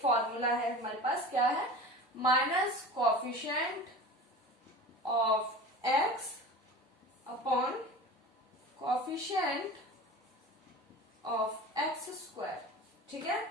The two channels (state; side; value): normal; both; correlation 0.35